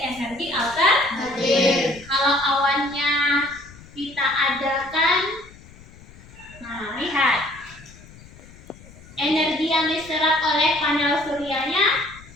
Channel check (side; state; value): left; noise; rumble, 21 dB below the sound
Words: alternatif. Kalau awannya kita adakan, nah lihat, energi yang diserap oleh panel suryanya